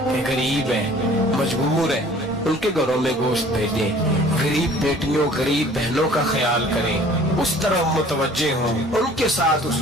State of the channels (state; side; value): normal; both; correlation 0.51